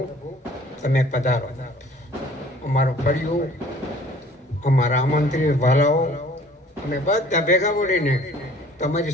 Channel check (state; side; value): normal; both; correlation 0.53